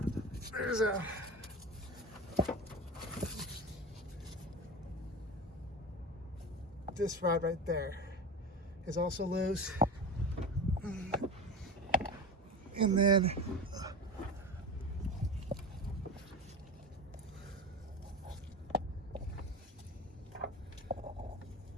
there's this rod right there is also loose. And then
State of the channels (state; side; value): normal; both; correlation 0.28